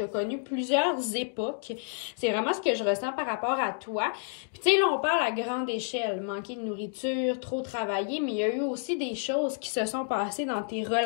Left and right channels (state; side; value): silent; right; 58 dB below the other